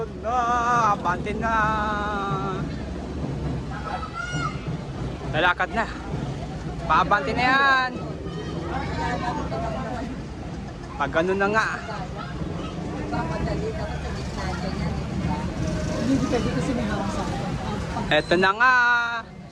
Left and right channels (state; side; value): identical; both; correlation 1.00